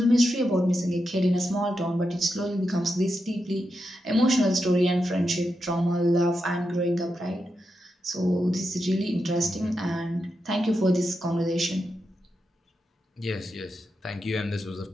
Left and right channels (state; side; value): normal; both; correlation 0.87